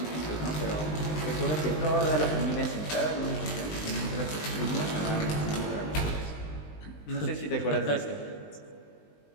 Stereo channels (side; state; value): right; late; 20 ms